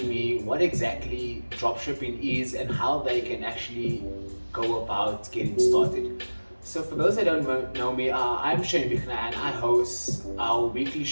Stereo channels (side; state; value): both; inverted; correlation -1.00